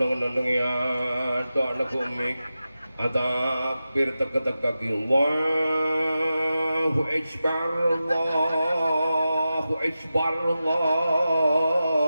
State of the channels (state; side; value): inverted; both; correlation -0.92